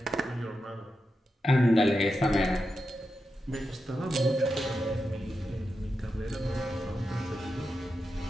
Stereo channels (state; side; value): normal; both; correlation 0.88